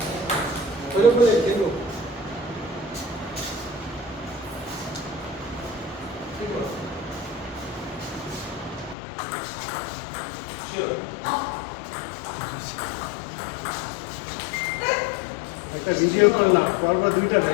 ওইরকম বলে দেখবো। একটা ভিডিও করলাম, পরপর 2টা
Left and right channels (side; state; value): right; drops out; at 9.0 s